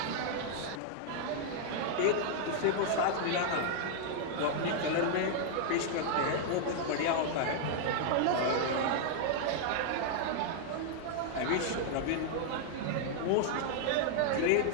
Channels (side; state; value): both; different; correlation -0.01